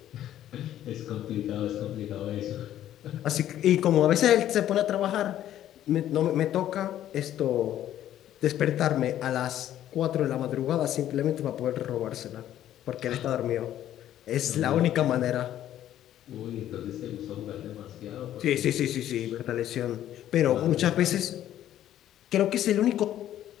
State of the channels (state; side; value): quieter; right; 12.0 dB